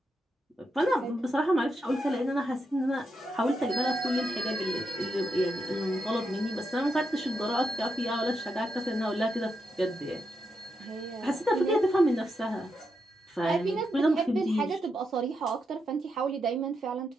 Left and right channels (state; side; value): normal; both; correlation 0.83